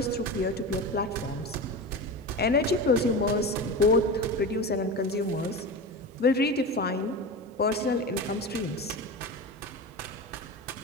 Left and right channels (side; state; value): both; normal; correlation 0.26